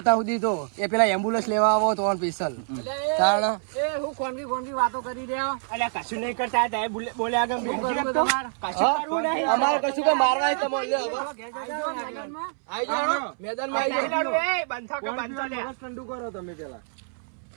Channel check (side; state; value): left; silent; 61 dB below the other